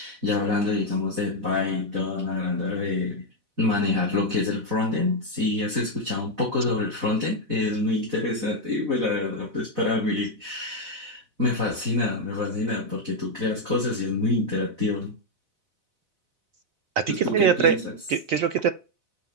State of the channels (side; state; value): left; late; 4.0 ms